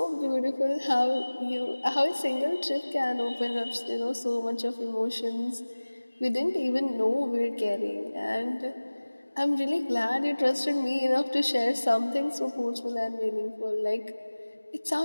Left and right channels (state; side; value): inverted; both; correlation -1.00